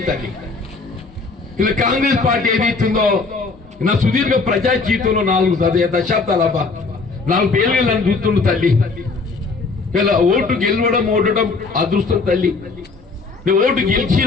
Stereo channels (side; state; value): right; quieter; 4.1 dB